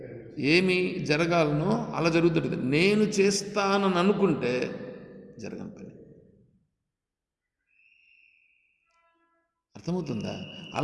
ఏమి జరగాలనో అలా జరుగుతుంది. నేను చేస్తానని అనుకుంటే జరగని పని. అర్థమవుతుందా?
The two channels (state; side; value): identical; both; correlation 1.00